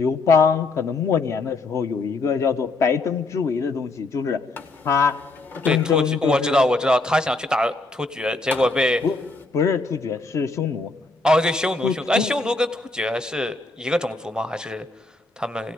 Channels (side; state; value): right; quieter; 3.2 dB